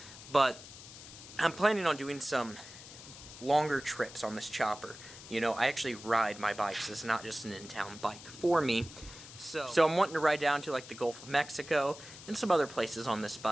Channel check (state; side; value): noise; left; hiss, 16 dB below the sound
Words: but I'm planning on doing some longer trips on this chopper. You know, I actually ride my bikes. It's not just an in-town bike for me. So I'm wanting to ride down to like the Gulf of Mexico and some other places on this